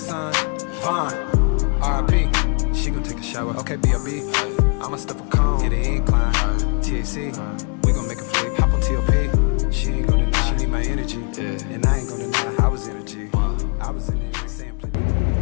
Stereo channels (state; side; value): quieter; right; 39.2 dB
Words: Vaughn, R.I.P. She gon' take a shower, okay, B.O.B. I'ma stuff a cone, hit the incline. THC, we gon' make a flick. Hop on T.O.P. She ain't gon' deny, she need my energy. And I ain't gon' deny, I was energy. I was in it, saying plenty.